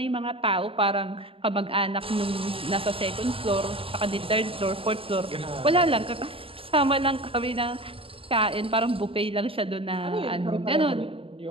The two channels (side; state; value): left; late; 0.27 ms